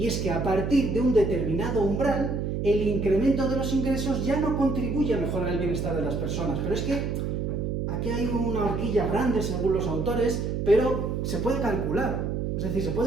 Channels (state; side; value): noise; right; hum, 1 dB below the sound